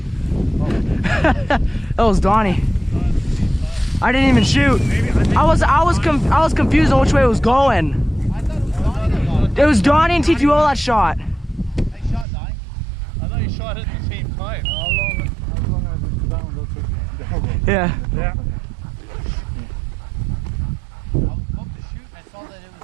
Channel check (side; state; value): left; drops out; at 12.2 s